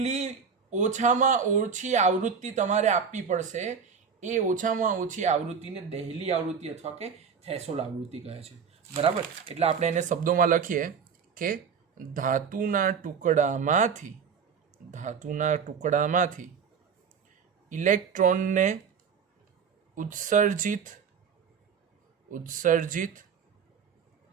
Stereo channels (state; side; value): quieter; left; 6.4 dB